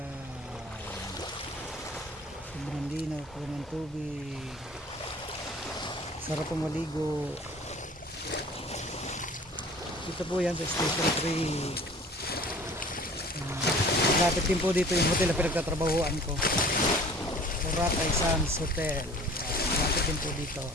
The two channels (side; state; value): both; normal; correlation 0.47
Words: sobrang linaw po ng tubig, sarap pong maligo. Ito po yan sa Station 3. Lapit din po dito yung hotel na pinagtatrabahuan ko, Boracay Sands Hotel. Lapit din po dito.